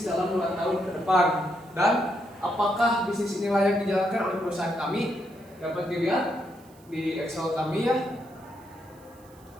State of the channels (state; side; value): noise; right; hiss, 28 dB below the sound